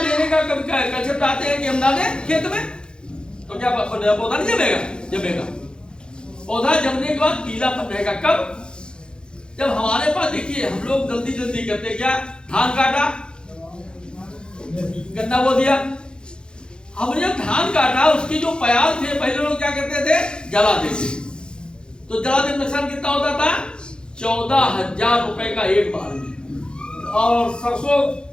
का कब कंसेप्ट आते हैं कि हम डालें खेत में, तो क्या पौधा नहीं जमेगा? जमेगा। पौधा जमने के बाद पीलापन रहेगा कब? जब हमारे पास, देखिए हम लोग जल्दी जल्दी करते क्या, धान काटा, गन्ना बो दिया। हमने जब धान काटा, उसकी जो प्याज थे पहले लोग क्या करते थे? जला देते। तो जला देने नुकसान कितना होता था? 14,000 रुपए का एक बार में। और सरसों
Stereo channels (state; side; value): late; right; 0.049 ms